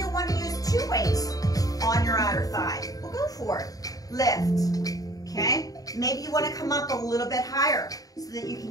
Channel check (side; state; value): right; late; 0.18 ms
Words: want to use 2 weights on your outer thigh. Well, go for it. Lift, okay? Maybe you want to come up a little bit higher so that you